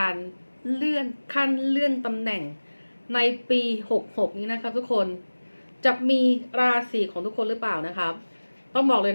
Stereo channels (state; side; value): inverted; both; correlation -1.00